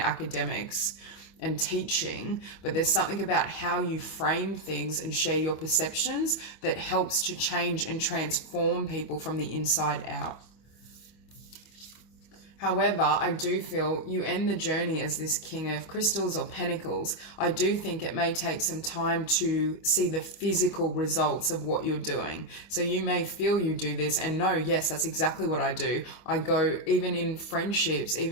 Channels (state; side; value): late; right; 25 ms